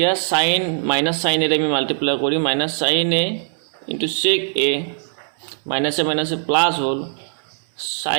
sin minus sin এ আমি মাল্টিপ্লাই কৰি minus sin a into sec a minus a plus hall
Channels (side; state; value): left; silent; 65 dB below the other